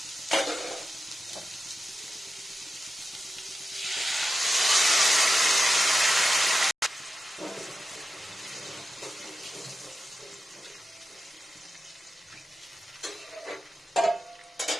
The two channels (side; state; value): both; normal; correlation 0.91